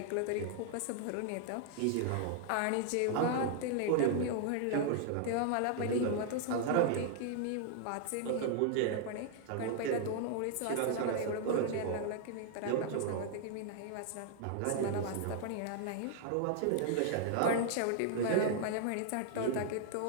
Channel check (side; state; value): both; different; correlation -0.01